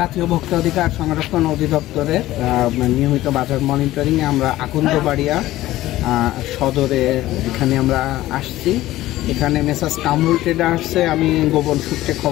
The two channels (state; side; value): quieter; right; 15.8 dB